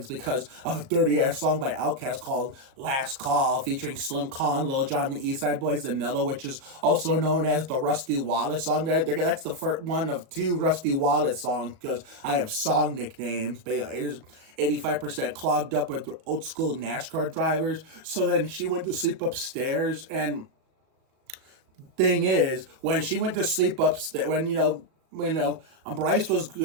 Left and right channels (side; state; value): left; late; 38 ms